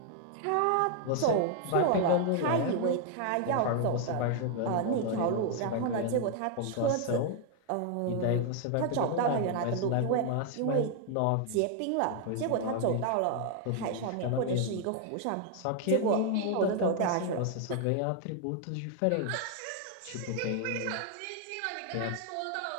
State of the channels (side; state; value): both; different; correlation 0.00